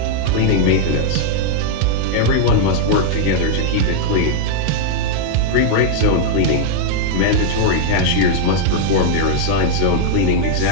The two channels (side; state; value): both; different; correlation -0.01